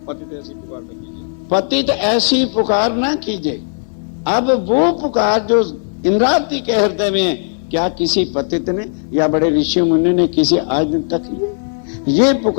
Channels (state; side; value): silent; right; digital silence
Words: पतित ऐसी पुकार ना कीजिए। पतित ऐसी पुकार ना कीजिए। अब वो पुकार जो इंद्रावती के हृदय में क्या किसी पतित ने या बड़े ऋषि मुनि ने किसी आज दिन तक किए? ये